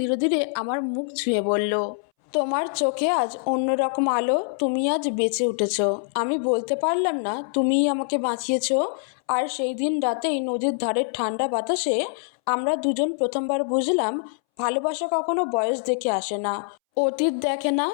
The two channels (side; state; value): right; silent; 62 dB below the other